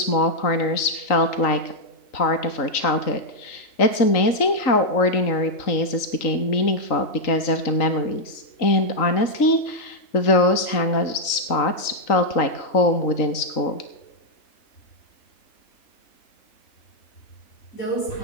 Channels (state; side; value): late; right; 3.8 ms